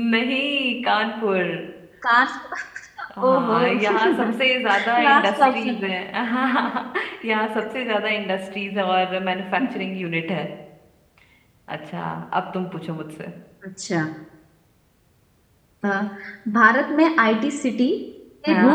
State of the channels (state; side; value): identical; both; correlation 1.00